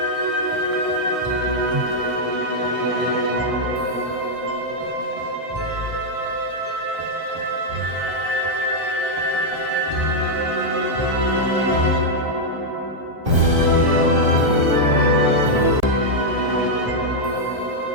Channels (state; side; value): late; left; 1.6 ms